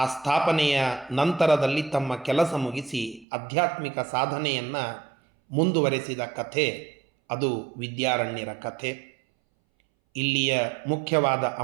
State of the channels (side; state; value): left; drops out; at 3.2 s